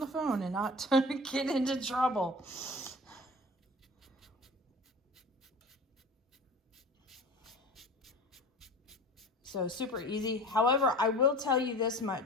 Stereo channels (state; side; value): normal; both; correlation 0.39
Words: phone and not get into trouble. So super easy. However, I will tell you this